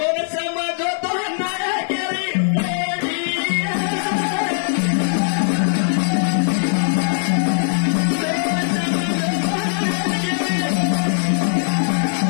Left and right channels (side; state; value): right; silent; 66 dB below the other